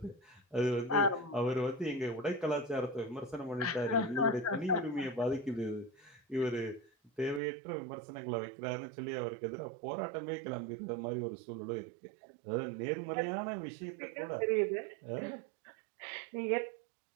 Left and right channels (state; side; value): drops out; left; at 7.4 s